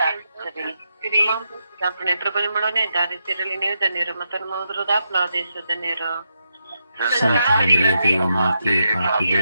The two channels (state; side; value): inverted; both; correlation -0.83